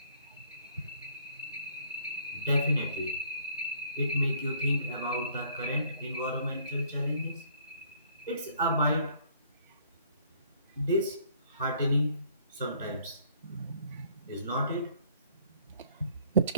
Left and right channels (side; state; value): both; inverted; correlation -0.58